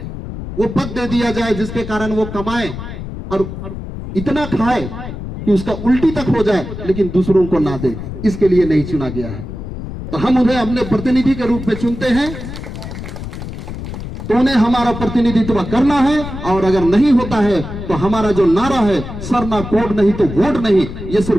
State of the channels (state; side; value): noise; left; rumble, 9 dB below the sound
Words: वो पद दे दिया जाए जिसके कारण वो कमाए और इतना खाए कि उसका उल्टी तक हो जाए लेकिन दूसरों को ना दे। इसके लिए नहीं चुना गया है। तो हम उन्हें अपने प्रतिनिधि के रूप में चुनते हैं, तो उन्हें हमारा प्रतिनिधित्व करना है। और अगर नहीं होता है तो हमारा जो नारा है सरना कोड नहीं तो वोट नहीं, ये